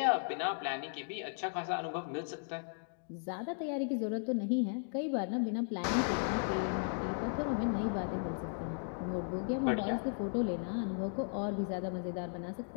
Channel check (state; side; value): silent; right; digital silence